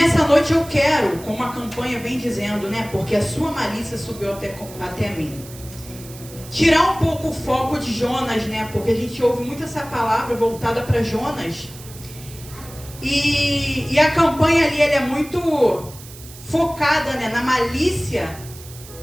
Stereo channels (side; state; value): right; noise; hiss, 18 dB below the sound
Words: noite eu quero, como a campanha vem dizendo, né, porque a sua malícia subiu até mim, tirar um pouco o foco de Jonas, né, porque a gente ouve muito essa palavra voltada para Jonas, e a campanha ali ela é muito focada, né, na malícia